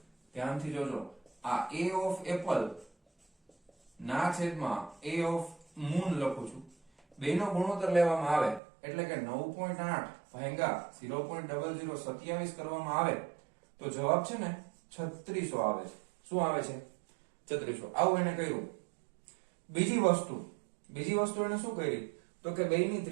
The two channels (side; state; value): left; drops out; at 8.6 s